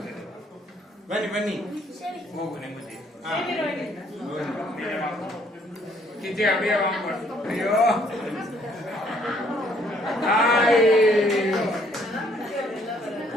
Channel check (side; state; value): both; normal; correlation 0.65